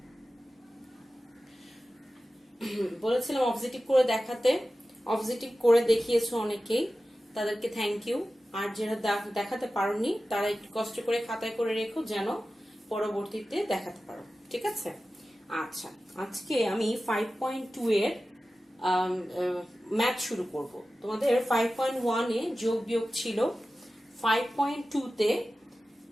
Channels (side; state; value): both; normal; correlation 0.95